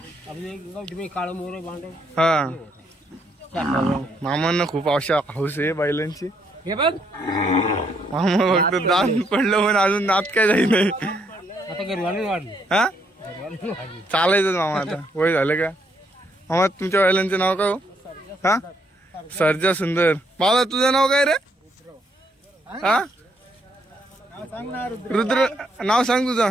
काळ मोर बांधव. हा मामांना खूप हाऊस आहे बैलांची. हे बघ मामा फक्त दात पडलं पण अजून दात काय जाई नाही. आता घरी वाढली. हा चालायचं मामा आता. वय झालं का? मामा तुमच्या बैलांचे नाव काय हो? हा सर्जा सुंदर. बाबा तुझं नाव काय रे? हा रुद्र. नाव सांग तुझं.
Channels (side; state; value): both; normal; correlation 0.72